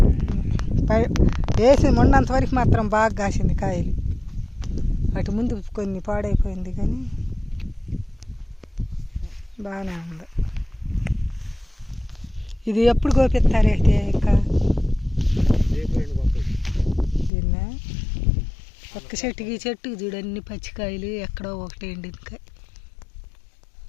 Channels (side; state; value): right; drops out; at 17.3 s